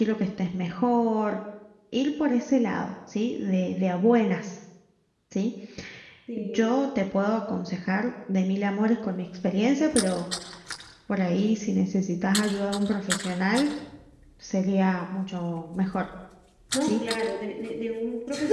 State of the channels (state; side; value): identical; both; correlation 1.00